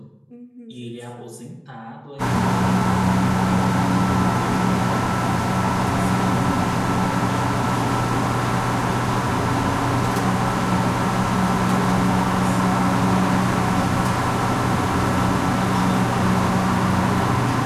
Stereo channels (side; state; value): both; identical; correlation 1.00